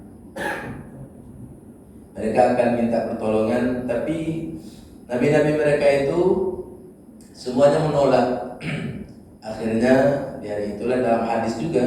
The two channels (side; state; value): both; identical; correlation 1.00